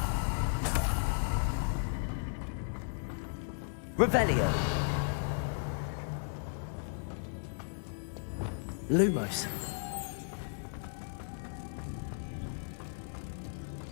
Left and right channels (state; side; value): silent; right; 54 dB below the other